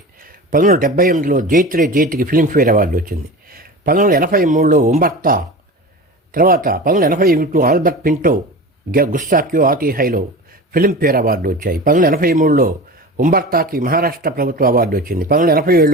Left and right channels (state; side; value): normal; both; correlation 0.32